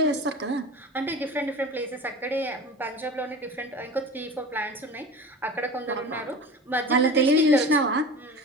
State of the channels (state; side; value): normal; both; correlation 0.34